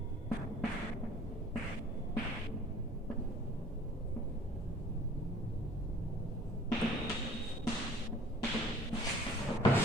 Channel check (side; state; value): both; normal; correlation 0.51